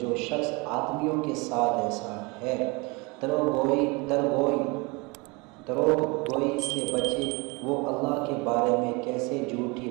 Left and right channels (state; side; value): quieter; left; 27.5 dB